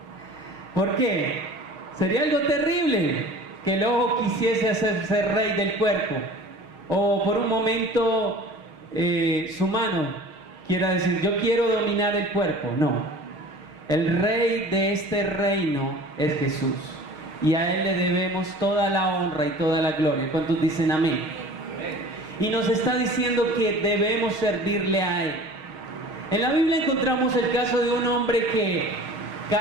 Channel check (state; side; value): late; left; 6.4 ms